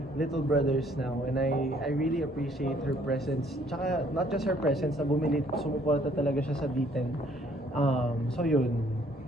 little brothers now. And I really appreciate her presence. Tsaka, not just her presence, na sumuporta talaga siya sa D10. So yun.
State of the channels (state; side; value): normal; both; correlation 0.62